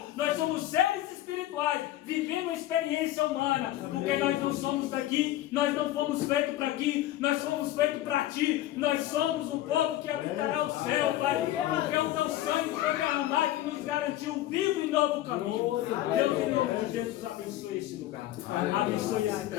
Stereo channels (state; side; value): quieter; right; 14.3 dB